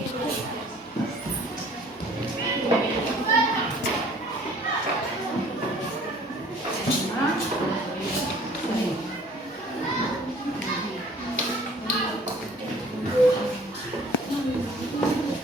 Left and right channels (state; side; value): normal; both; correlation 0.53